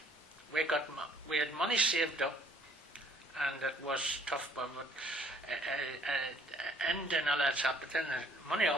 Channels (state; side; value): normal; both; correlation 0.59